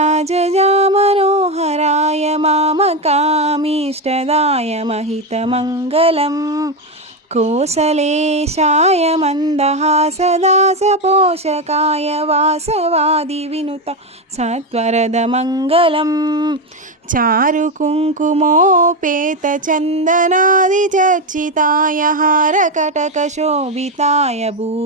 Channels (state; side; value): normal; both; correlation 0.10